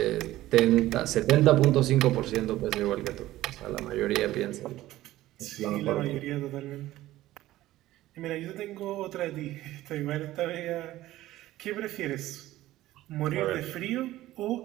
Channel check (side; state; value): left; quieter; 15.7 dB